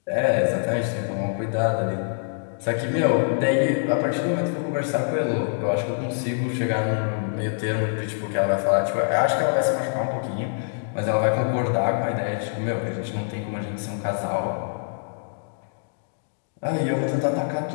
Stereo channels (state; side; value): silent; right; digital silence